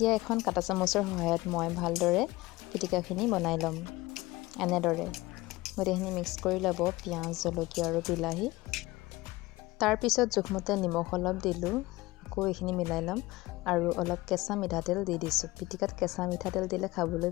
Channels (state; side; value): quieter; right; 20.1 dB